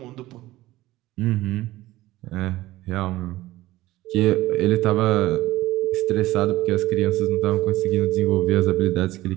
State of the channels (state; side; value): quieter; left; 17.1 dB